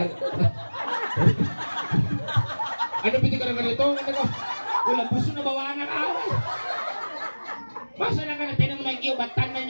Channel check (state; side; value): inverted; both; correlation -1.00